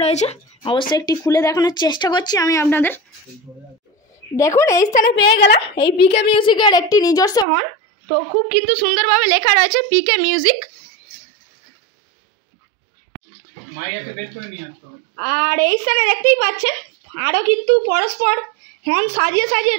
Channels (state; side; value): drops out; left; at 7.5 s